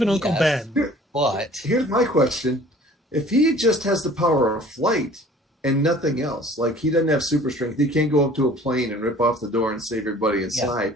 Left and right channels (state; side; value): normal; both; correlation 0.50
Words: an Uncle Ben? But here's my question. If he just has the power of flight and nothing else, like he doesn't have super strength, he can't go up to a plane and rip off the door and save everybody inside.